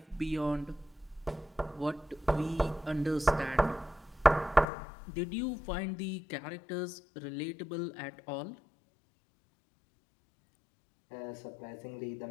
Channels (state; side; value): drops out; right; at 4.7 s